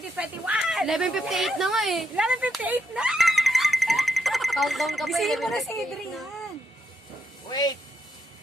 11:58 na nga eh. 11:58 na! Countdown ka pa. Bisihin mo na si 11:58 Adrian. Wait.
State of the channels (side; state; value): both; normal; correlation 0.80